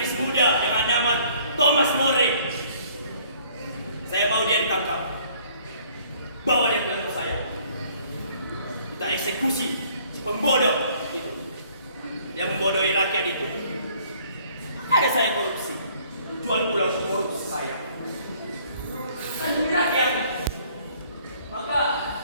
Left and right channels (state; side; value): inverted; both; correlation -0.59